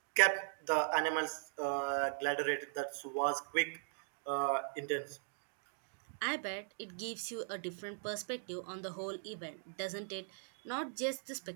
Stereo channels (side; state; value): left; silent; digital silence